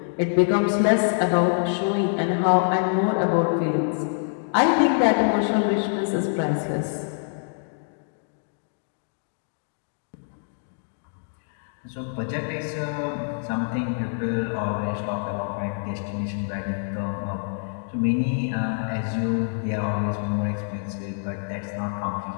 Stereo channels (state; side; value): silent; right; 61 dB below the other